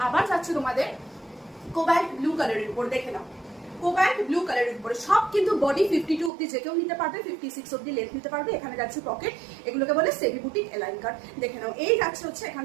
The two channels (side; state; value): left; drops out; at 6.3 s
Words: আবার যাচ্ছে তোমাদের কোবাল্ট ব্লু কালারের উপর। দেখে নাও, কোবাল্ট ব্লু কালারের উপরে সব কিন্তু বডি 52 অবধি যে কেউ নিতে পারবে, 56 অবধি লেন্থ নিতে পারবে। এখানে যাচ্ছে পকেট, এগুলোকে বলে সেমি বুটিক এলাইন কাট। দেখে নাও, এই যাচ্ছে হচ্ছে এখান